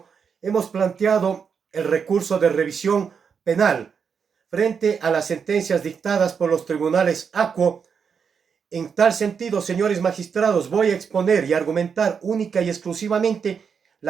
hemos planteado el recurso de revisión penal frente a las sentencias dictadas por los tribunales ACUO. En tal sentido, señores magistrados, voy a exponer y argumentar única y exclusivamente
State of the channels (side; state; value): left; quieter; 6.5 dB